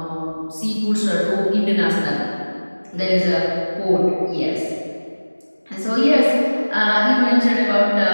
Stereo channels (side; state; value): both; inverted; correlation -1.00